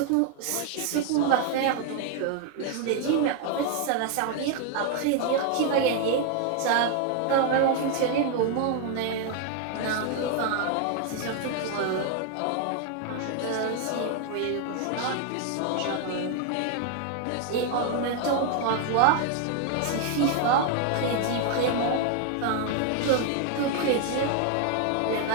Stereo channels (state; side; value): different; both; correlation 0.00